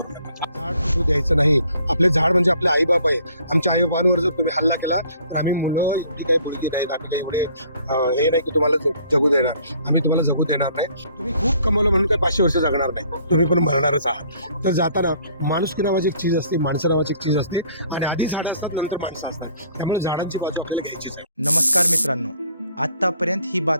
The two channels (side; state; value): both; inverted; correlation -0.59